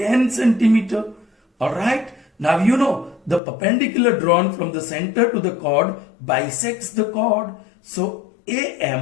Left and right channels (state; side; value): drops out; right; at 3.4 s